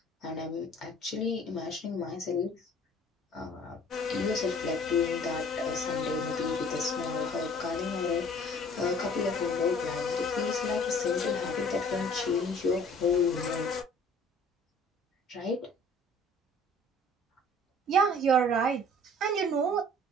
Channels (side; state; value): both; normal; correlation 0.52